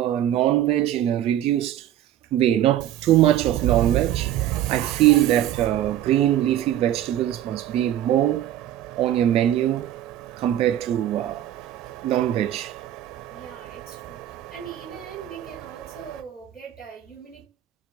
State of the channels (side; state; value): left; quieter; 12.1 dB